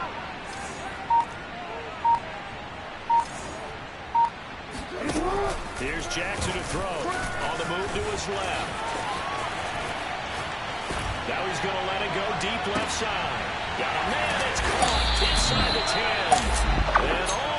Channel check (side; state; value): both; identical; correlation 1.00